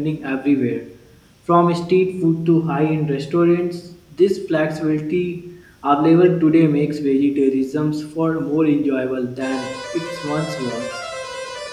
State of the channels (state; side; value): identical; both; correlation 1.00